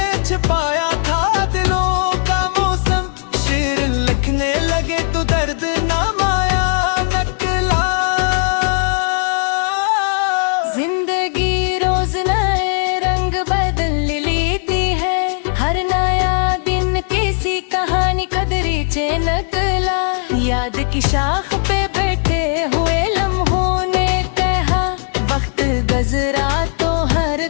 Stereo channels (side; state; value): right; silent; 56 dB below the other